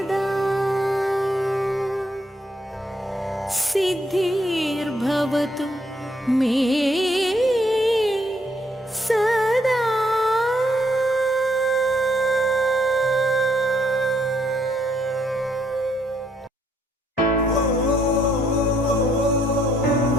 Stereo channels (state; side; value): normal; both; correlation 0.71